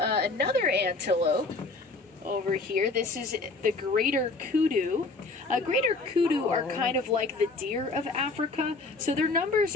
antelope. Over here, this is the greater kudu. Greater kudu are kind of like the deer of Africa, so their numbers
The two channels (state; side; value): quieter; right; 3.6 dB